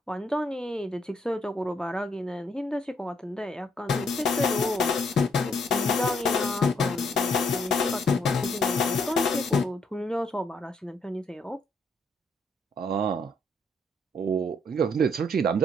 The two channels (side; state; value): both; normal; correlation 0.72